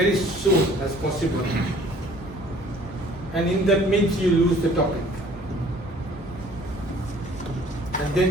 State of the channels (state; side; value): normal; both; correlation 0.55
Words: soon as possible. And in that midst, you lose the topic. And